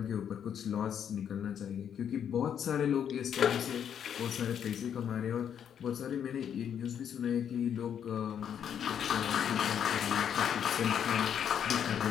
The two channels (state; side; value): quieter; right; 8.7 dB